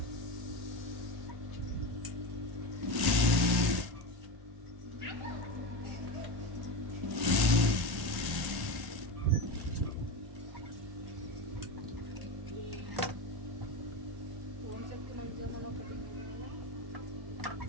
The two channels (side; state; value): left; late; 1.1 ms